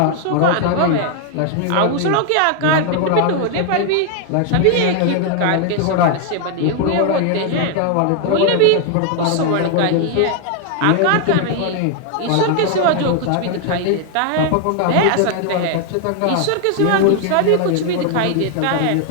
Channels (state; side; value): different; both; correlation 0.00